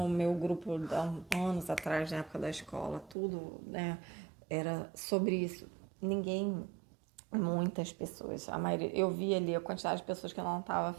meu grupo há anos atrás, na época da escola, tudo, né? Era sobre isso. Muitas pessoas, a maioria, eu vi ali a quantidade de pessoas que não estava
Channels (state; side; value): drops out; left; at 3.2 s